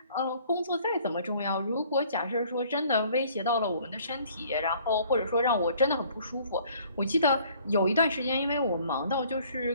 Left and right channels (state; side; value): inverted; both; correlation -0.57